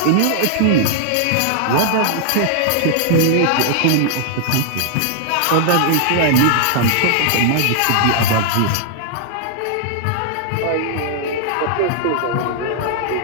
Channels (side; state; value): both; different; correlation -0.01